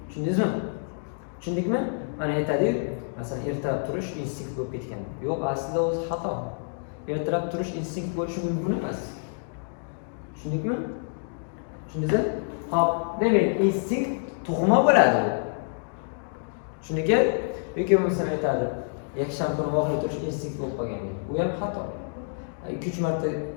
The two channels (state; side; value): silent; right; digital silence